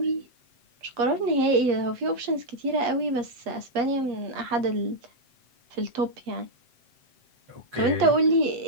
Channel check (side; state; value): left; late; 7.8 ms